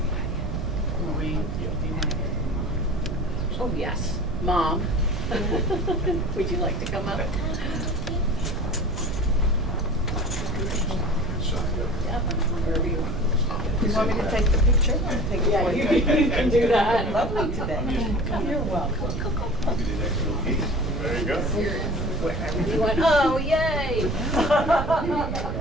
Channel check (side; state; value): right; noise; rumble, 3 dB below the sound